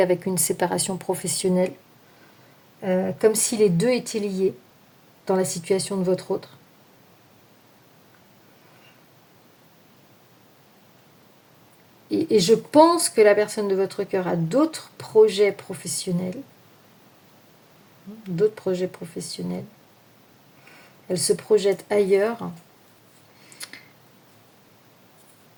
une séparation professionnelle, comme si les deux étaient liés dans la situation de votre autre. Et je pense que la personne de votre cœur a d'autres projets professionnels. Elle se projette ailleurs.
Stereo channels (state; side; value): identical; both; correlation 1.00